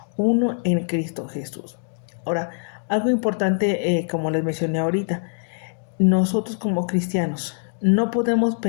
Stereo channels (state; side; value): silent; right; digital silence